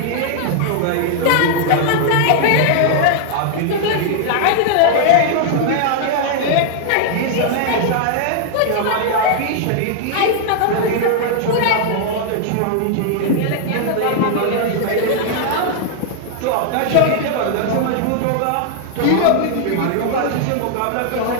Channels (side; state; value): both; different; correlation -0.01